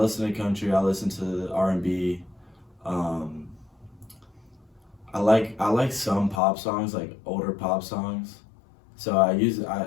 to country. I listen to R&B. I like some pop songs, like older pop songs. So I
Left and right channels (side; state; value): right; drops out; at 6.4 s